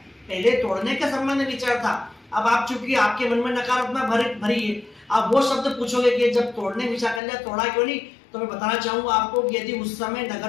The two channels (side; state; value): right; drops out; at 7.2 s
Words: पहले तोड़ने के संबंध में विचार था। अब आप चूंकि आपके मन में नकारात्मक भरी है, आप वो शब्द पूछोगे कि जब तोड़ने विचार कर लिया तोड़ा क्यों नहीं? तो मैं बताना चाहूंगा आपको कि यदि उस समय